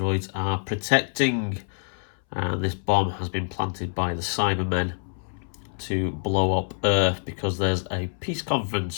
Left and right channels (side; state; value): right; silent; 61 dB below the other